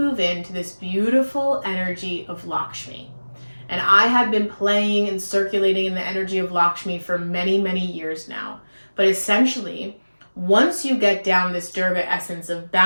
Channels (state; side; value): inverted; both; correlation -1.00